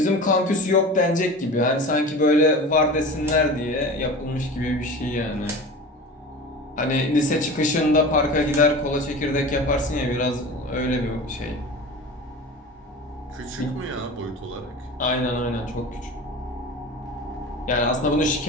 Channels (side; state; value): both; normal; correlation 0.34